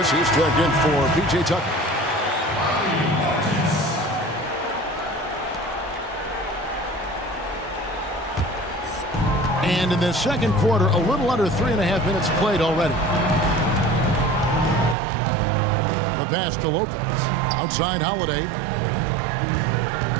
is checked in for P.J. Tucker. And in the second quarter, a little under 3.5 minutes played already. The pass to Lopez. Outside Holiday.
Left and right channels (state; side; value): drops out; left; at 15.0 s